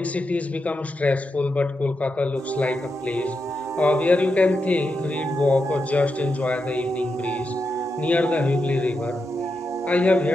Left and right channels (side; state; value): both; normal; correlation 0.86